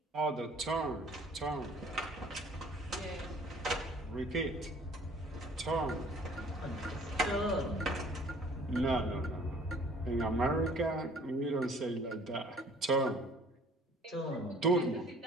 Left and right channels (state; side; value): normal; both; correlation 0.54